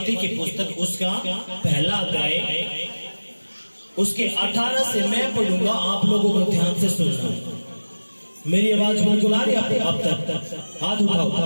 की पुस्तक उसका पहला अध्याय, उसके 18 से मैं पढ़ूंगा, आप लोगों को ध्यान से सुनना है। मेरी आवाज बिल्कुल आ रही है अब तक? हाथ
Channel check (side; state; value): both; inverted; correlation -1.00